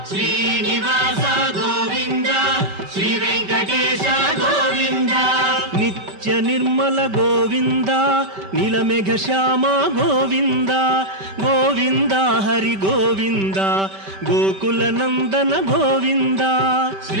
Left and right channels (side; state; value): left; late; 5.2 ms